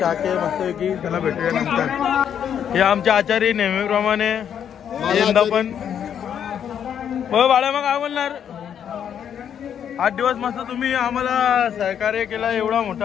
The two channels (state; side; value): quieter; right; 8.7 dB